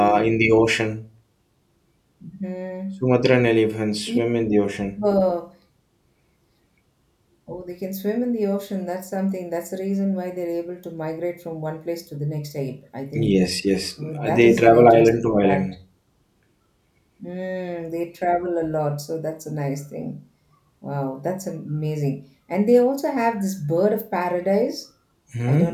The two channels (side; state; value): both; identical; correlation 1.00